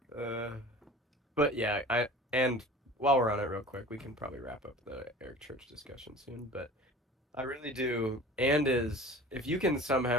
Yes. But yeah, and while we're on it real quick, we can probably wrap up the Eric Church discussion soon, but I really do. And is if you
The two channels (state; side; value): normal; both; correlation 0.41